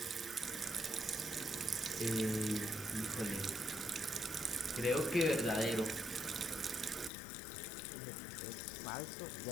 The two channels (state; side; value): drops out; right; at 7.1 s